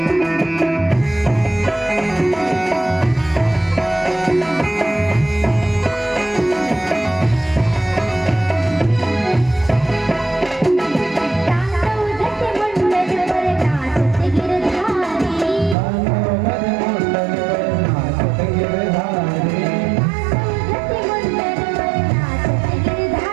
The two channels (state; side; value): drops out; left; at 15.8 s